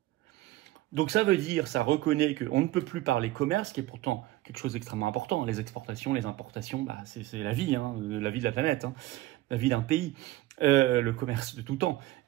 Donc ça veut dire, ça reconnaît qu'on ne peut plus parler commerce, qui est pourtant quelque chose d'extrêmement important. Les exportations, les importations, c'est la vie, la vie de la planète, la vie d'un pays, le commerce de tout temps.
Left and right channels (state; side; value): quieter; left; 16.7 dB